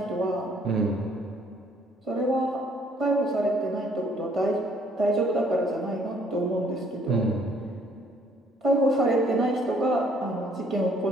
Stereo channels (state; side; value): normal; both; correlation 0.63